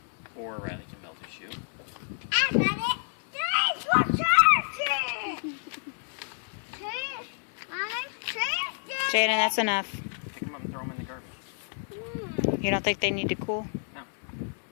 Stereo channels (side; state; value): right; silent; 57 dB below the other